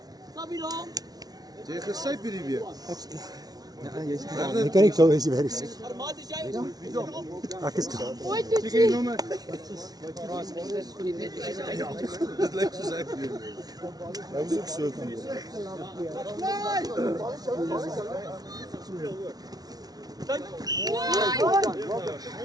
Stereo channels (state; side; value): late; left; 0.19 ms